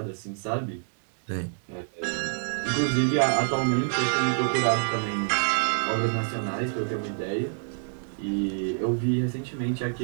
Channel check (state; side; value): silent; left; digital silence